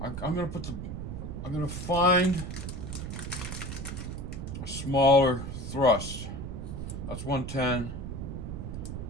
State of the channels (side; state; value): right; noise; rumble, 6 dB below the sound